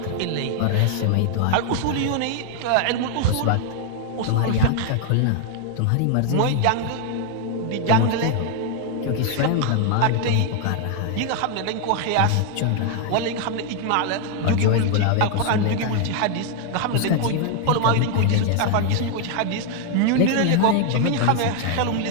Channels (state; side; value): different; both; correlation 0.00